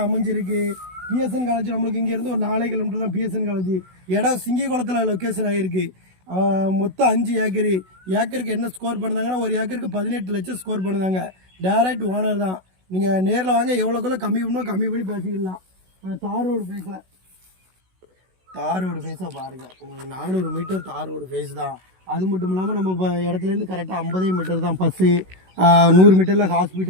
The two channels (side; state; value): left; late; 16 ms